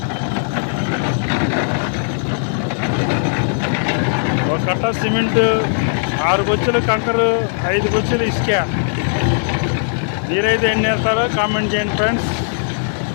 ఒక కట్ట సిమెంట్, 6 బొచ్చులు కంకరు, 5 బొచ్చులు ఇసుక. మీరైతే ఎన్ని వేస్తారో కామెంట్ చేయండి ఫ్రెండ్స్.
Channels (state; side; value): silent; right; digital silence